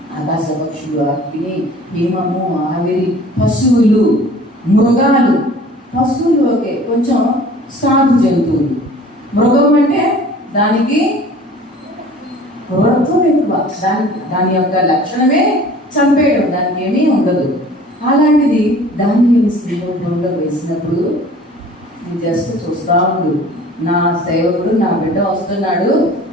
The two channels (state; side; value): normal; both; correlation 0.47